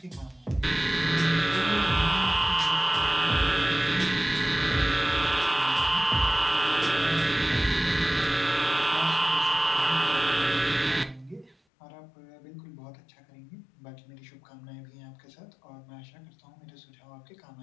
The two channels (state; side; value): drops out; right; at 11.6 s